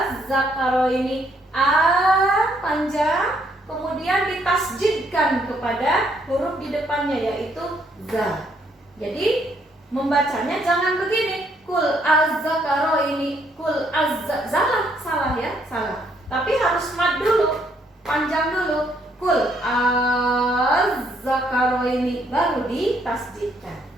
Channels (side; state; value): both; normal; correlation 0.70